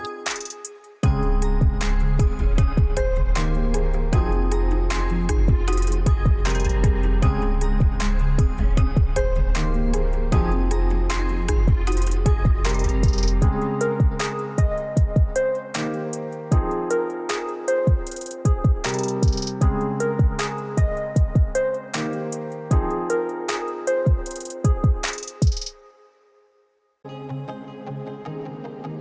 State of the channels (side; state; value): both; identical; correlation 1.00